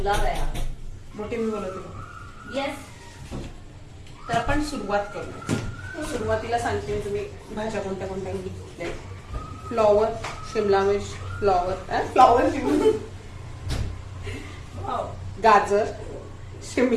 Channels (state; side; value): identical; both; correlation 1.00